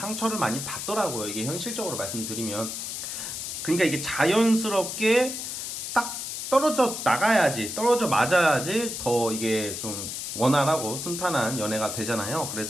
많이 받더라고요. 이게 현실적으로 말씀드리면. 그러니까 이게 자연스럽게 딱 떨어져 나가야지, 떨어져 맞아야지 더 이게 좀 원활하고 순탄한 연애가 되잖아요.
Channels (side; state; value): left; noise; hiss, 5 dB below the sound